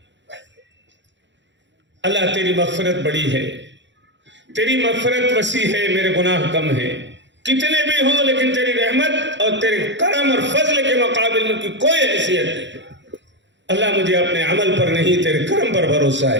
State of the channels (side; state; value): left; late; 0.53 ms